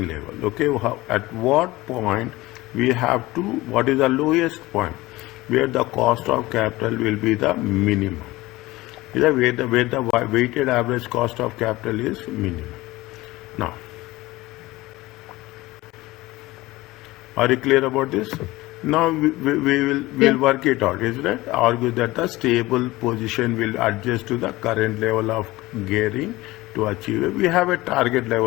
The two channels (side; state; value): right; quieter; 19.2 dB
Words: level. Okay, at what point we have to, what is the lowest point where the cost of capital will be the minimum. Is that where the weighted average cost of capital is minimum. Now, are you clear about this? Now we'll work it out. Is that argue that the stable position will adjust to the current level of gearing to achieve it. We have a target